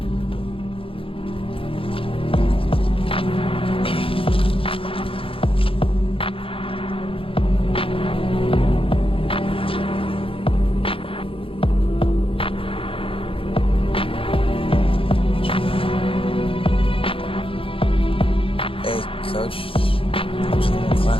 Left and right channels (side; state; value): right; late; 0.26 ms